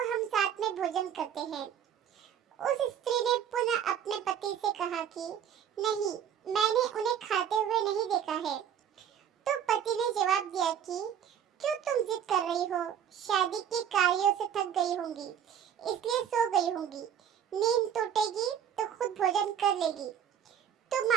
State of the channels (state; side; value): quieter; left; 8.9 dB